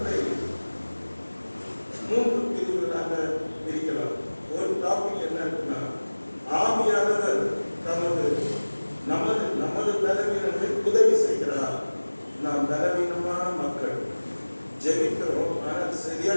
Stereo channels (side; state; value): both; inverted; correlation -1.00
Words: 3 பிரிவுகளாக பிரிக்கலாம். ஒரு டாபிக் என்ன இருக்குன்னா, ஆவியானவர் நமது பலவீனங்களை உதவி செய்கிறார். நாம் பலவீனமான மக்கள், ஜெபிக்கிறோம், ஆனால்